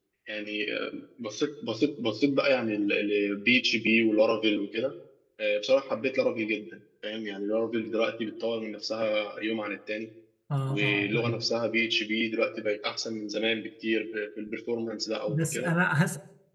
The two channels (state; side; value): identical; both; correlation 1.00